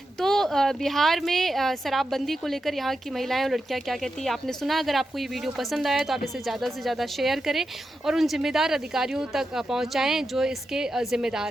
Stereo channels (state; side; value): normal; both; correlation 0.88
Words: तो बिहार में शराबबंदी को लेकर यहाँ की महिलाएं और लड़कियाँ क्या कहती हैं आपने सुना। अगर आपको ये वीडियो पसंद आया तो आप इसे ज़्यादा से ज़्यादा शेयर करें और उन जिम्मेदार अधिकारियों तक पहुँचाएँ जो इसके